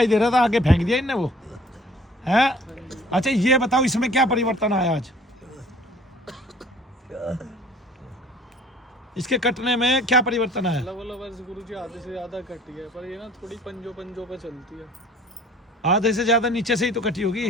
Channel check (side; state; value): both; normal; correlation 0.52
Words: दे रहा था, आगे फेंक दिया इनने वो है। अच्छा ये बताओ इसमें क्या परिवर्तन आया आज? इसके कटने में क्या परिवर्तन आया? गुरुजी आधे से ज्यादा कटी है, पर ये ना थोड़ी पंजों पे चलती है। आधे से ज्यादा नीचे से ही तो कटी